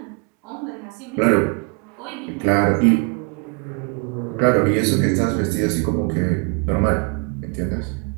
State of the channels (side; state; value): left; quieter; 35.1 dB